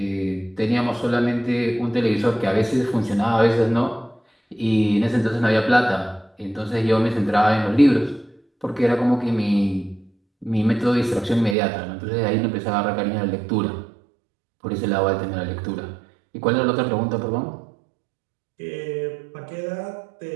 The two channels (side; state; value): left; drops out; at 11.6 s